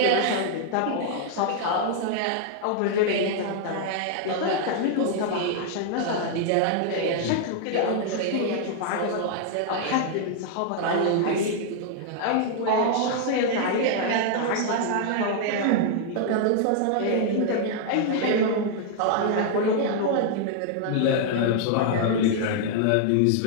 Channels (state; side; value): different; both; correlation 0.00